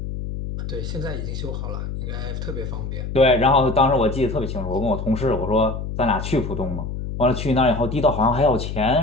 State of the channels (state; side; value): noise; left; hum, 6 dB below the sound